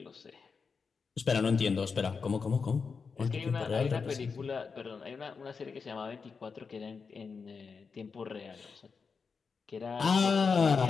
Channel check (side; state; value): right; quieter; 5.3 dB